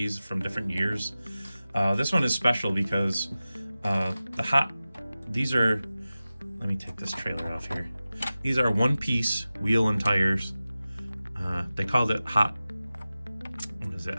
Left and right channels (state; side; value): inverted; both; correlation -0.96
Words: from different years. This one is special because these are, let me take this trailer off here. These are one-piece wheel and tires. They called it hot